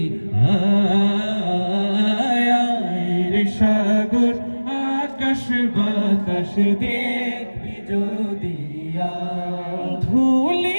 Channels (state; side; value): inverted; both; correlation -1.00